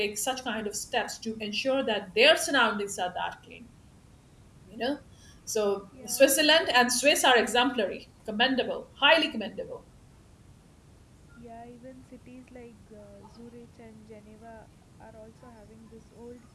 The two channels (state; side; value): identical; both; correlation 1.00